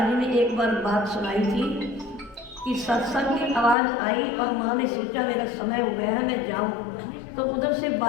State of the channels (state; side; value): drops out; right; at 3.8 s